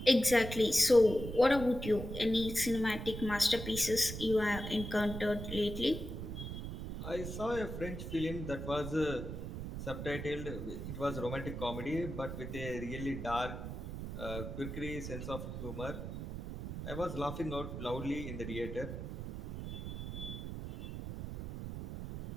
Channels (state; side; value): noise; right; rumble, 7 dB below the sound